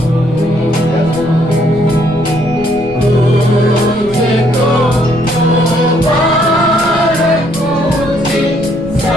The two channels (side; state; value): right; noise; rumble, 15 dB below the sound